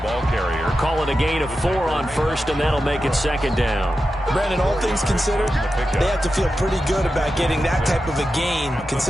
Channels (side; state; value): both; normal; correlation 0.91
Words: ball carrier. Call it a gain of 4 on 1st, and that'll make it 2nd down. Brandon, all things considered, they have to feel pretty good about getting that type of a gain,